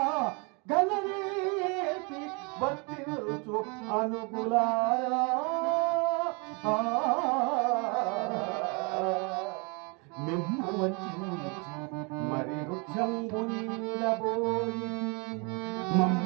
గలరేపి వర్తిల్చు అనుగులారా మిమ్ము వంచించి మరి వృక్షంబు నీడబోయి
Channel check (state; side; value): quieter; left; 32.0 dB